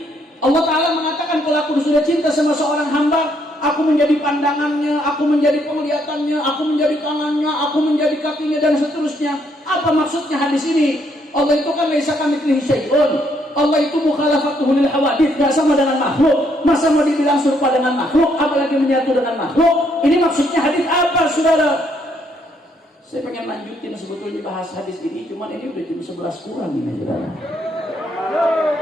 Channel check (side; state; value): both; normal; correlation 0.71